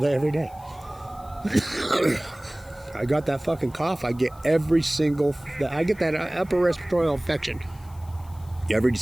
every day. I got that fucking cough. I get that upper respiratory infection every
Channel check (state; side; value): noise; left; hiss, 26 dB below the sound